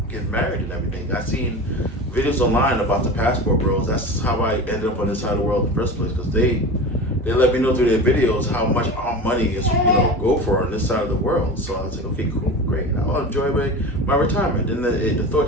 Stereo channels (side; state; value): both; normal; correlation 0.31